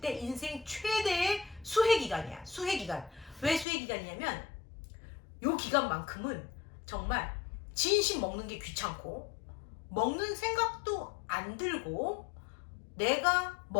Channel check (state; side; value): drops out; right; at 3.7 s